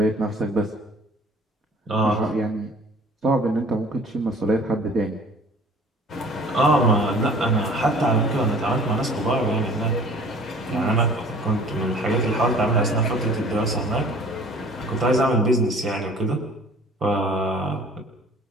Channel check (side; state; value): both; normal; correlation 0.49